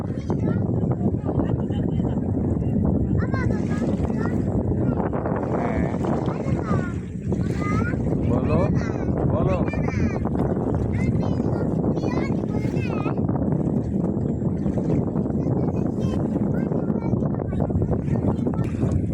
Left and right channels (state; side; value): identical; both; correlation 1.00